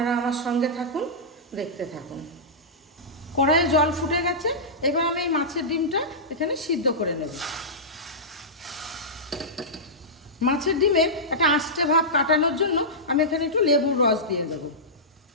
আমার সঙ্গে থাকুন, দেখতে থাকুন। কড়াইয়ে জল ফুটে গেছে, এবার আমি এই মাছের ডিমটা এখানে সিদ্ধ করে নেব। মাছের ডিমের একটা আঁশটে ভাব কাটানোর জন্য আমি এখানে একটু লেবুর রস দিয়ে দেব।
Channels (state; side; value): normal; both; correlation -0.15